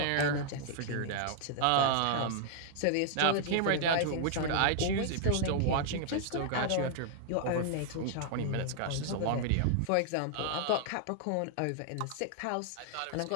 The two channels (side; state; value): both; different; correlation -0.01